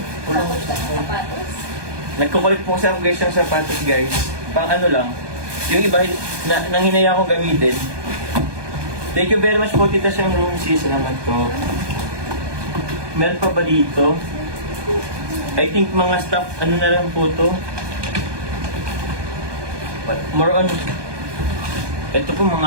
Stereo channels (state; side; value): late; left; 1.2 ms